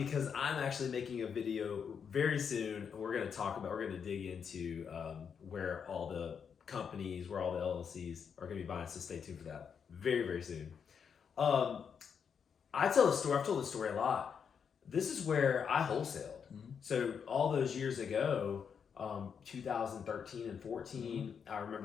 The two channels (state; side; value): quieter; right; 6.9 dB